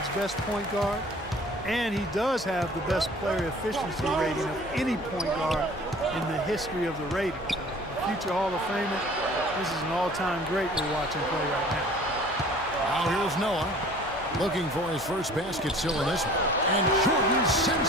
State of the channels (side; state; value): both; normal; correlation 0.48